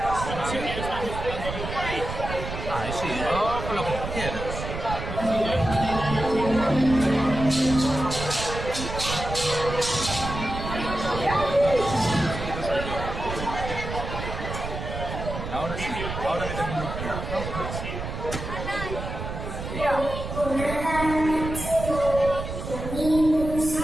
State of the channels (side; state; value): right; noise; rumble, 6 dB below the sound